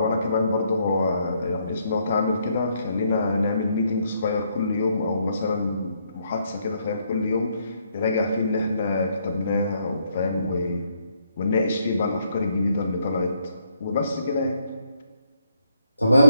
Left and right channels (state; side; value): inverted; both; correlation -0.74